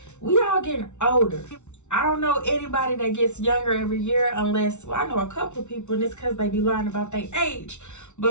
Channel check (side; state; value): right; late; 0.82 ms